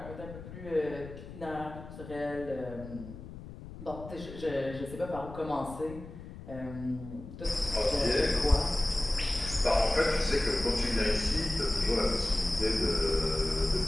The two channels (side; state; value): left; noise; rumble, 13 dB below the sound